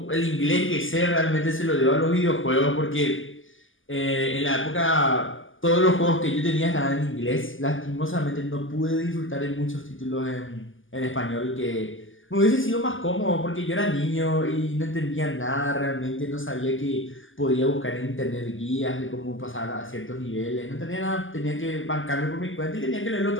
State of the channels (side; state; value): right; late; 0.58 ms